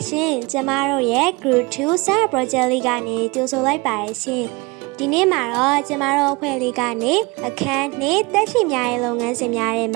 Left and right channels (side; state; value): left; quieter; 25.8 dB